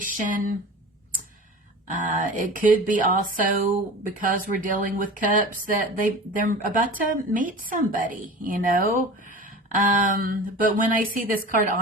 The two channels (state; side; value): normal; both; correlation 0.35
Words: It could be also because we're dealing with cups that they're about to meet somebody, you know. But when I see this card,